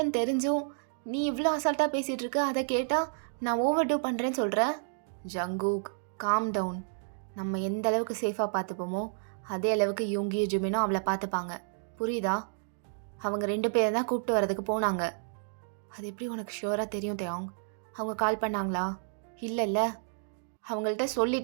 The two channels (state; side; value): silent; left; digital silence